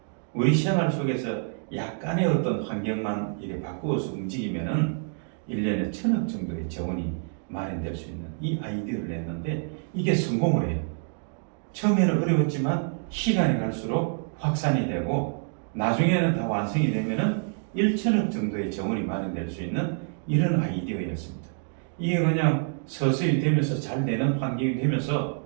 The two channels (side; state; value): left; silent; 57 dB below the other